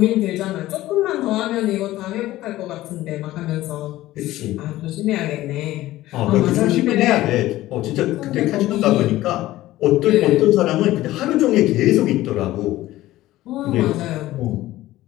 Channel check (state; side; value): quieter; right; 16.0 dB